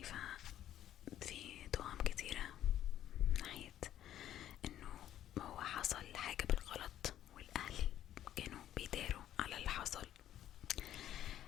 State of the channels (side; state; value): right; quieter; 11.7 dB